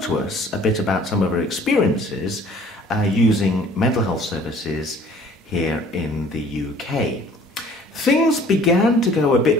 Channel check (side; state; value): both; normal; correlation 0.53